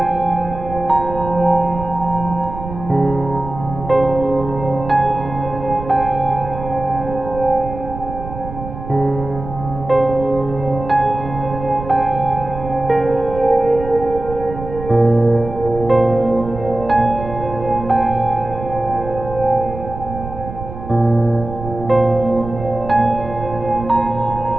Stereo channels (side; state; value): right; noise; rumble, 10 dB below the sound